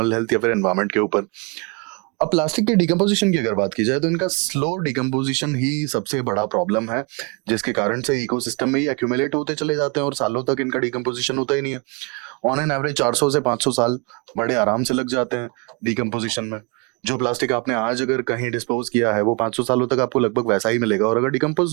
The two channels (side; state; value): left; quieter; 30.9 dB